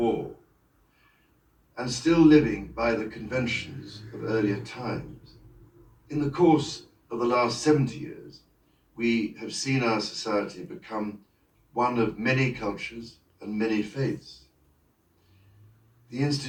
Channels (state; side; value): identical; both; correlation 1.00